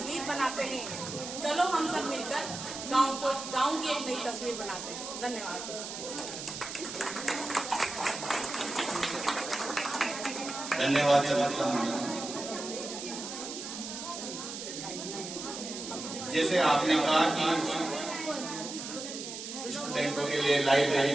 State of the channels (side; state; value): right; noise; hiss, 8 dB below the sound